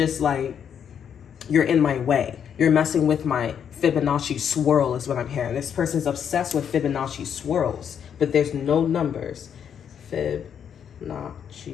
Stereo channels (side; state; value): right; quieter; 8.2 dB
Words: like, you're in my way. You're messing with my Fibonacci swirl is what I'm hearing. This person's obsessed with Fibonacci swirls, but there's no numbers.